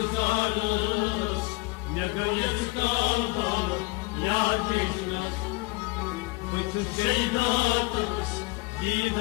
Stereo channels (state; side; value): quieter; right; 24.1 dB